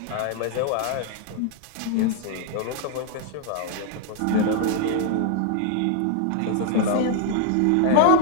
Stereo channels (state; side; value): different; both; correlation 0.00